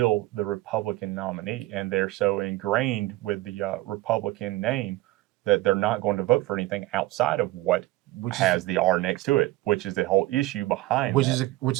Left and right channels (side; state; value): left; quieter; 17.9 dB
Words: the Republican nominee, and they're so ingrained with the Republican name that they're not going to vote for anything outside of what has the R next to it, which is the whole issue behind which is